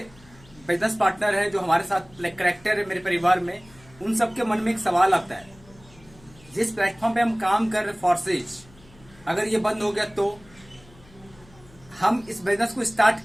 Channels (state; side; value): noise; left; hum, 25 dB below the sound